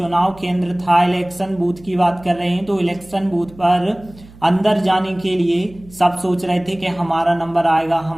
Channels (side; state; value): right; noise; hum, 22 dB below the sound